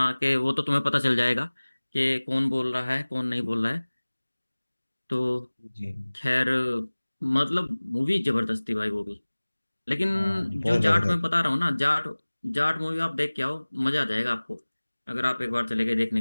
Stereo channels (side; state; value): both; inverted; correlation -1.00